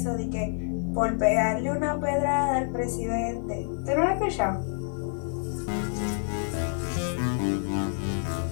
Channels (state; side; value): silent; right; 60 dB below the other